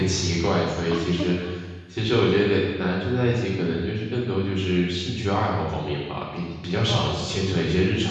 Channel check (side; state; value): both; identical; correlation 1.00